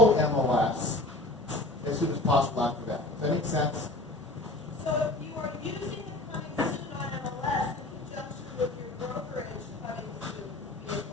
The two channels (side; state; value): both; normal; correlation 0.40